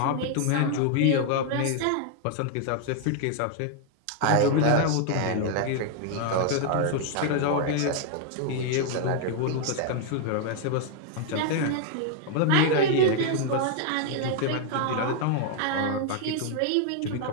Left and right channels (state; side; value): different; both; correlation 0.00